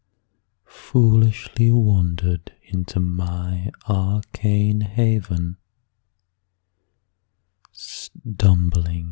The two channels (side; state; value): right; silent; 61 dB below the other